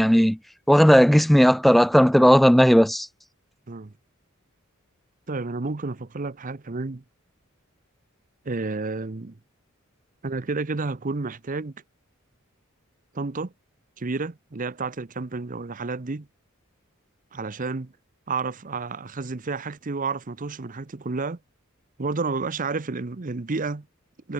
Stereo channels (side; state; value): both; normal; correlation 0.89